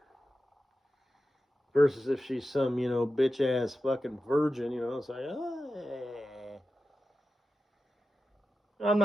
Versus if she's some, bitch ass fucking virgin, it's like, hey. I'm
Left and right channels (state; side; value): normal; both; correlation 0.92